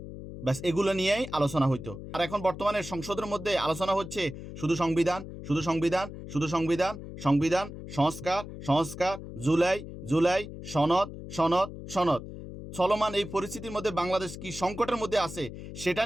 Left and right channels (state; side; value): noise; left; hum, 11 dB below the sound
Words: ব্যাস এগুলো নিয়েই আলোচনা হইতো। আর এখন বর্তমানে সংসদের মধ্যে আলোচনা হচ্ছে শুধু সংবিধান, শুধু সংবিধান, শুধু সংবিধান, সংবিধান, সংস্কার, সংস্কার, জুলাই, জুলাই, সনদ, সনদ, সনদ। চলমান এই পরিস্থিতির মধ্যে বাংলাদেশ কি সংকটের মধ্যে আছে সেটা